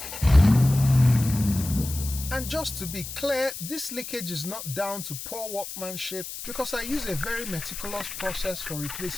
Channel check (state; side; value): noise; left; hiss, 9 dB below the sound